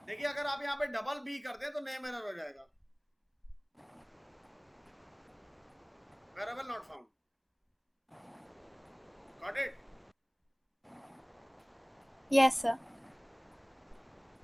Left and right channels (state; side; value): identical; both; correlation 1.00